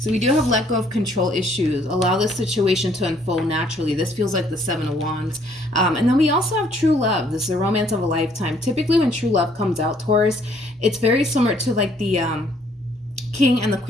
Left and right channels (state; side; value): normal; both; correlation 0.64